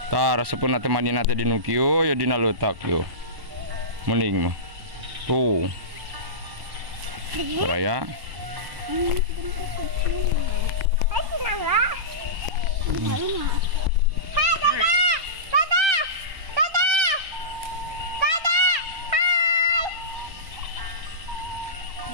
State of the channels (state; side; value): late; left; 1.0 ms